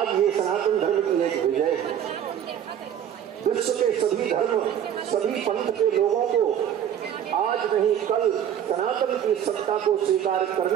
ये सनातन धर्म की एक विजय है। विश्व के सभी धर्म, सभी पंथ के लोगों को आज नहीं कल सनातन की सत्ता को स्वीकार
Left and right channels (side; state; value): left; quieter; 9.7 dB